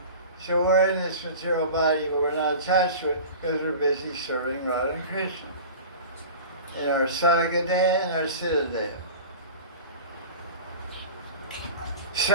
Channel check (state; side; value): inverted; both; correlation -0.36